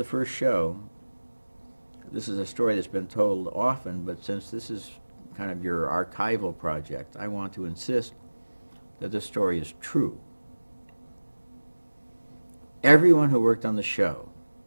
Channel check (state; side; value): inverted; both; correlation -1.00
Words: first show, this is a story that's been told often, but since this is kind of your archival project. I want to insist that this story is true. Everyone who worked on the show